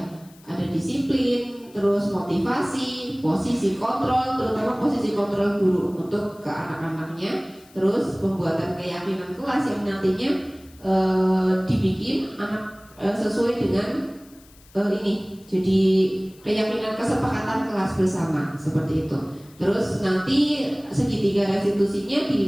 ada disiplin, terus motivasi, posisi kontrol, terutama posisi kontrol guru untuk ke anak-anaknya. Terus pembuatan keyakinan kelas yang nantinya dibikin anak sesuai dengan ini, jadi keyakinan kesepakatan kelas bersama seperti itu. Terus nanti segitiga restitusinya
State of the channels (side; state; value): left; noise; hiss, 26 dB below the sound